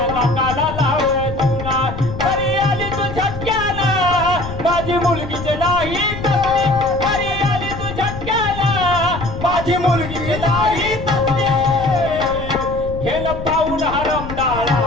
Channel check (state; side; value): noise; left; rumble, 9 dB below the sound